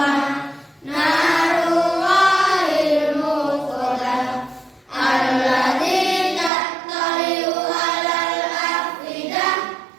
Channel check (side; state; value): left; drops out; at 6.5 s